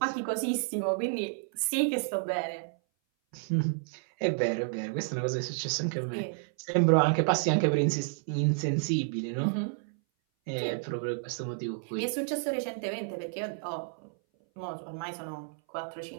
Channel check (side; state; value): left; silent; 57 dB below the other